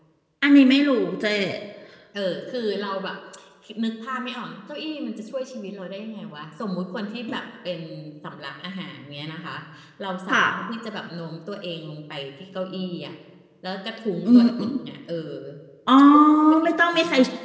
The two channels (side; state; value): both; identical; correlation 1.00